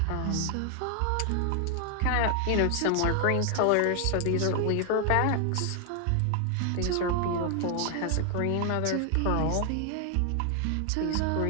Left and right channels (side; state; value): both; different; correlation 0.00